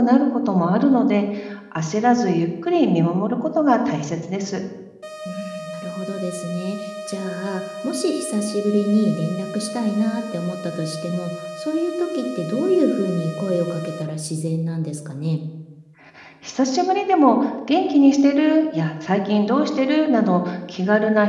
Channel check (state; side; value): identical; both; correlation 1.00